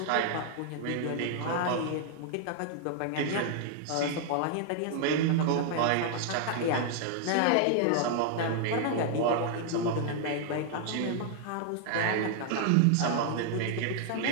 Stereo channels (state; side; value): different; both; correlation 0.00